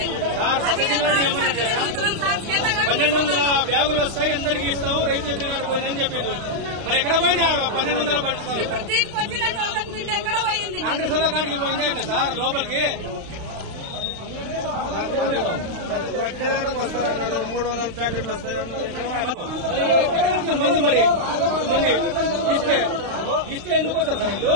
1200 బ్యాగులు వస్తాయి, అందరికి ఇస్తాం, రైతు ఎదురుగానే పోయిందని చెప్పిండ్రు. మరి ఎక్కడ పోయినా 1200 పడుతుంది. ఎక్కడ పోయింది? కాంగ్రెస్ వాళ్ళ కాడికి పోయిందే ఇట్లా సార్ లోపలికి 300 ప్యాకెట్లు వస్తాయి. మంది మరి మంది ఇస్తే ఎందుకు వస్తారు సార్ వీళ్ళు?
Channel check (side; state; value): left; late; 35 ms